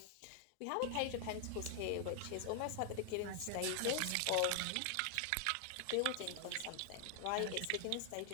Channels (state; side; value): different; both; correlation 0.00